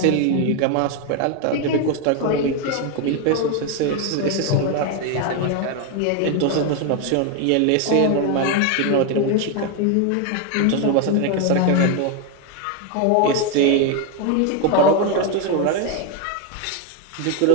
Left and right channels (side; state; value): both; different; correlation 0.01